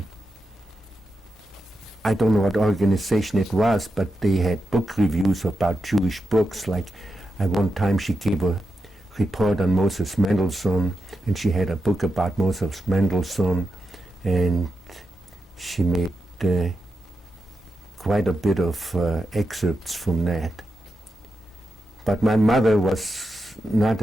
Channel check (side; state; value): both; normal; correlation 0.88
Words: I don't know what organization it was, but they had book reviews about Jewish books. Like at one time she gave a report on Moses Mendelssohn, and she had a book about Moses Mendelssohn, and she made quite a bit of excerpts from that. But my mother was not